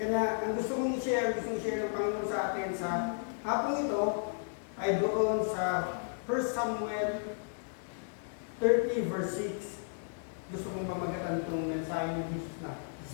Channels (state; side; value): silent; right; digital silence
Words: ang gusto kong i-share ng Panginoon sa atin sa hapong ito, ay doon sa 1 Samuel 30 verse 6. Gusto kong pamagatan itong mensahe ni Jesus na